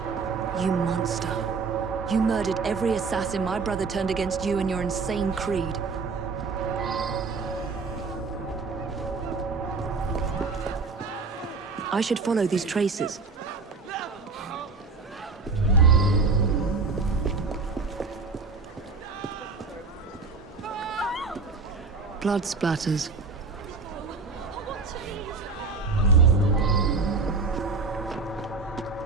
You monster. You murdered every assassin my brother turned against you and your insane creed. I should follow these traces. Blood splatters.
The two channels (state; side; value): quieter; left; 4.3 dB